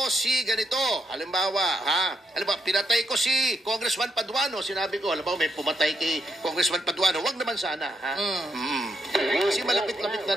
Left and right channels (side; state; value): both; normal; correlation 0.77